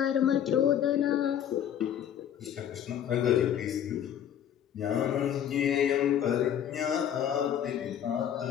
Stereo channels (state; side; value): quieter; right; 9.7 dB